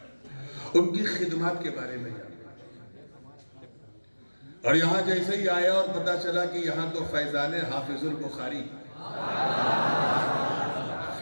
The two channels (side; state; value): both; inverted; correlation -1.00